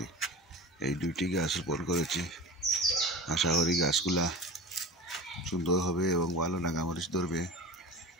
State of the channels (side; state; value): both; normal; correlation 0.33